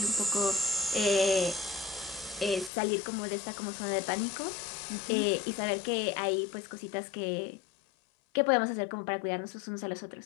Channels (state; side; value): drops out; right; at 2.7 s